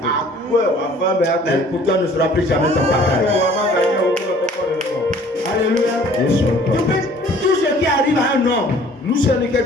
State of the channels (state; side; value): normal; both; correlation 0.53